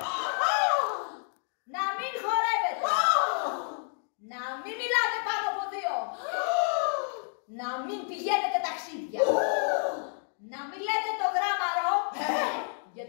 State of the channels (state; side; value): silent; right; 56 dB below the other